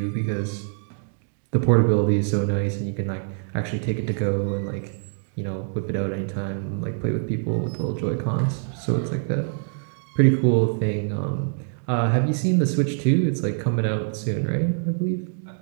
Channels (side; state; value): left; silent; 62 dB below the other